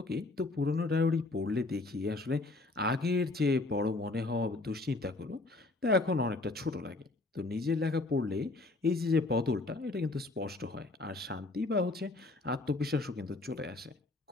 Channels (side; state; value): right; quieter; 3.1 dB